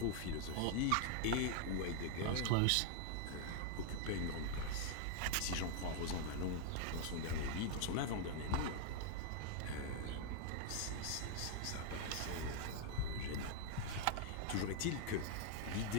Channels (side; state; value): both; different; correlation -0.01